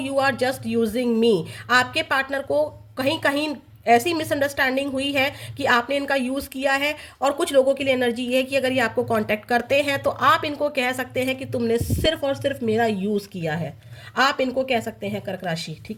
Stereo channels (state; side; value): identical; both; correlation 1.00